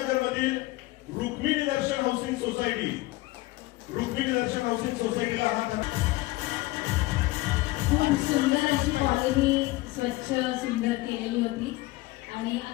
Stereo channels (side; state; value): right; quieter; 19.7 dB